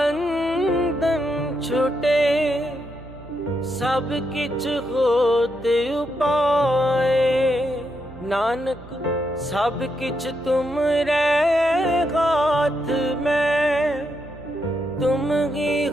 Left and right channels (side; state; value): right; noise; hum, 19 dB below the sound